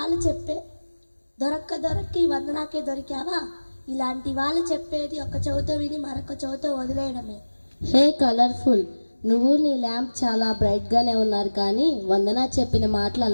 చెప్పే దొరక్క ఈ వందనాకే దొరికావా? ఇలాంటి వాళ్ళు చెప్పేది ఒక చెవితో విని మరొక చెవితో వదిలేయడమే. హే కలర్ఫుల్, నువ్వు నీ ల్యాంప్ చాలా బ్రైట్ గానే ఉన్నారు, కానీ వందన చెప్పిన మాటలు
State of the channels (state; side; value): inverted; both; correlation -1.00